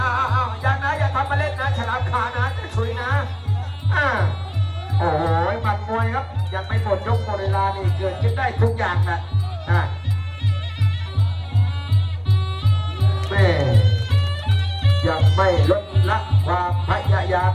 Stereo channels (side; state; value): both; identical; correlation 1.00